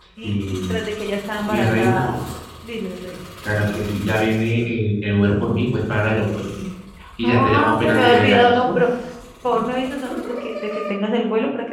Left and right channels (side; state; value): both; identical; correlation 1.00